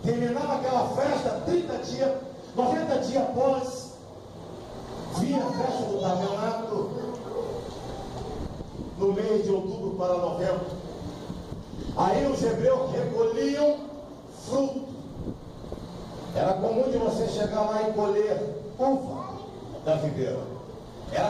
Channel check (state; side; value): identical; both; correlation 1.00